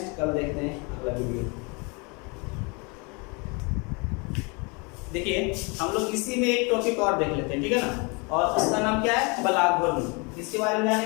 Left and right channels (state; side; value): quieter; right; 30.9 dB